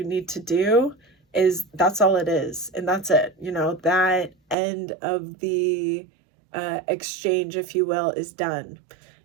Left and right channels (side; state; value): left; drops out; at 4.5 s